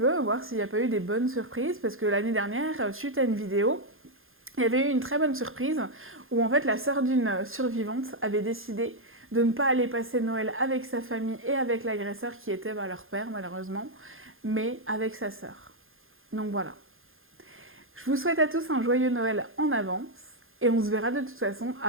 voir s'il n'y a pas eu des bonnes surprises, parce que l'année dernière, suite à une vidéo, il y avait eu une très bonne surprise, où en fait la sœur d'une survivante avait décidé de ne pas aller passer Noël avec sa famille et avec l'agresseur qui était leur père malheureusement, mais avec sa sœur. Donc voilà. Je vous souhaite à tous un joyeux Noël en avance et on se verra de toute façon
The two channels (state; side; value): late; left; 0.60 ms